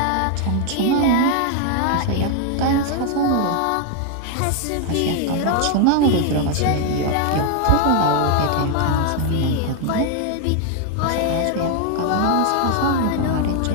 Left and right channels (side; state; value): both; different; correlation 0.00